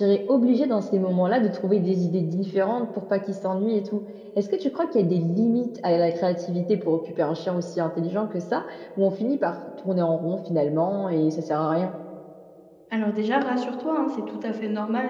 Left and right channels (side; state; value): both; identical; correlation 1.00